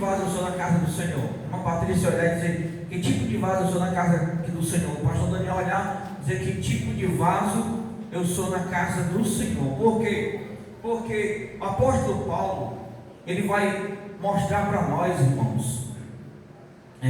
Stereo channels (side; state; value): both; identical; correlation 1.00